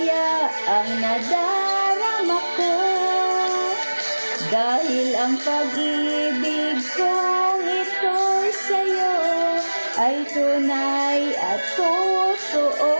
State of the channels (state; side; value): inverted; both; correlation -1.00